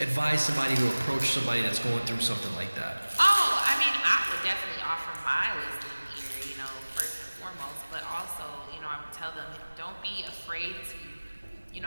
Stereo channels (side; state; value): both; inverted; correlation -1.00